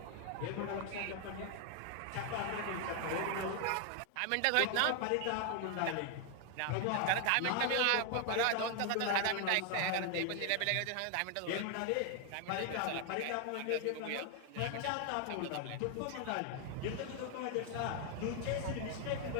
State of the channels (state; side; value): different; both; correlation 0.00